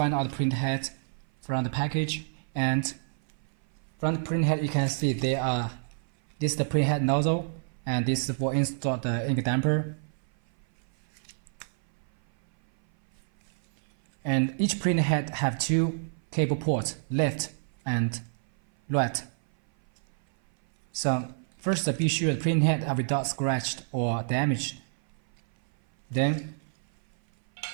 out the print head from the package, and from the print head you can see this is the print head nozzle, and this is for install the ink damper. And each print head have two cable ports, left and right. So first be sure the print head are without scratched or damaged. Then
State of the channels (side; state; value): left; silent; 57 dB below the other